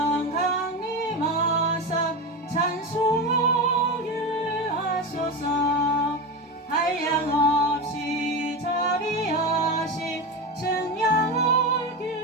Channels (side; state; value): both; normal; correlation 0.20